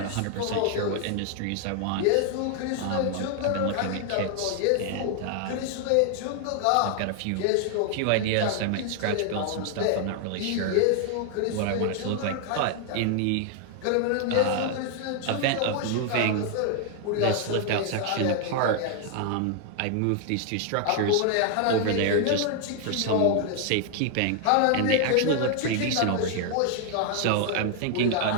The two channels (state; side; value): different; both; correlation 0.00